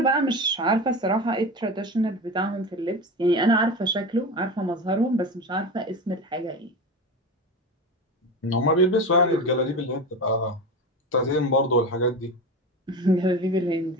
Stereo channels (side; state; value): both; normal; correlation 0.25